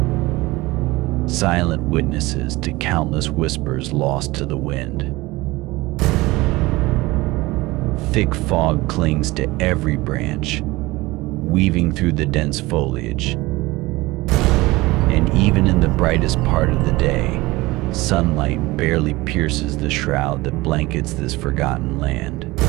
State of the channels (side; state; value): left; quieter; 20.7 dB